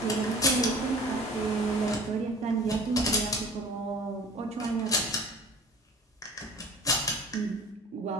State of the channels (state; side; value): normal; both; correlation 0.44